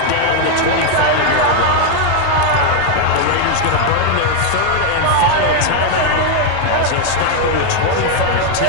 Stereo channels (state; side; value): different; both; correlation 0.01